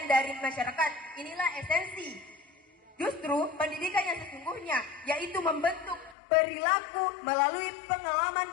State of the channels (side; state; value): right; drops out; at 6.2 s